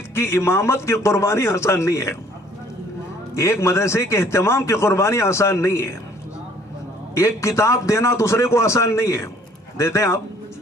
کی امامت کی قربانی آسان نہیں ہے، ایک مدرسے کے اہتمام کی قربانی آسان نہیں ہے، ایک کتاب دینا دوسرے کو آسان نہیں ہے۔ دیتے ہیں آپ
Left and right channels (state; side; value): normal; both; correlation 0.58